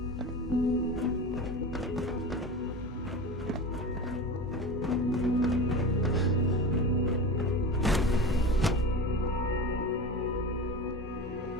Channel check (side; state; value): both; normal; correlation 0.29